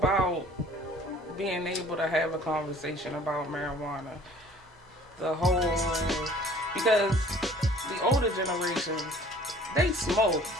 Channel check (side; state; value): both; normal; correlation 0.52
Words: being able to have a conversation about marijuana. Because the older generations, they smoke.